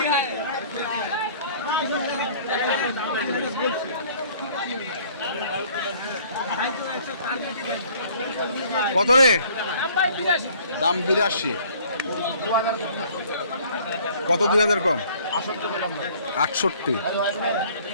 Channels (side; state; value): both; inverted; correlation -0.55